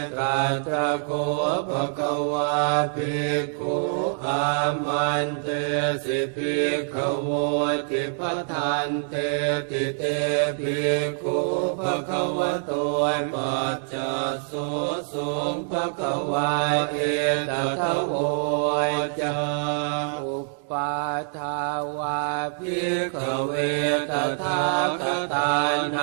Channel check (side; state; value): left; silent; digital silence